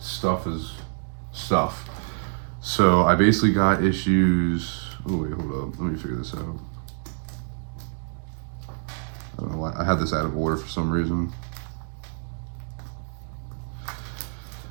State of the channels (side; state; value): left; silent; digital silence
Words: Stuff. So I basically got issues. Oh wait, hold up. Let me figure this out. I don't know why I had this out of order for some reason.